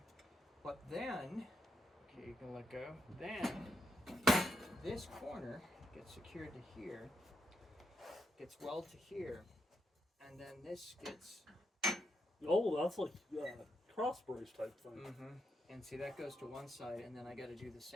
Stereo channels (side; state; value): both; normal; correlation 0.82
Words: But then, okay, you can let go. Then this corner gets secured to here. Gets welded to here. And then this gets. Oh, that's like cross brace type thing. Mm-hmm. And see, that goes to one side, and then I got to do the